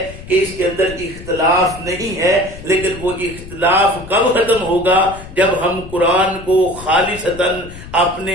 کہ اس کے اندر اختلاف نہیں ہے، لیکن وہ اختلاف کب ختم ہوگا؟ جب ہم قرآن کو خالصتاً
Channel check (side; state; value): left; noise; rumble, 14 dB below the sound